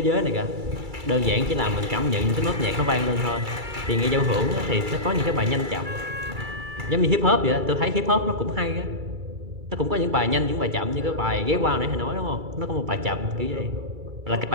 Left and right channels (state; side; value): late; left; 2.3 ms